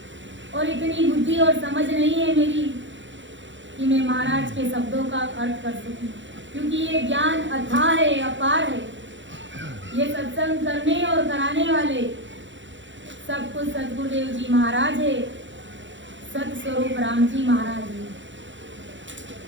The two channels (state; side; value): late; left; 0.54 ms